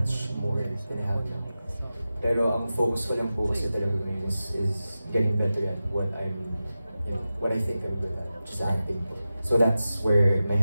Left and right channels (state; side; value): inverted; both; correlation -0.94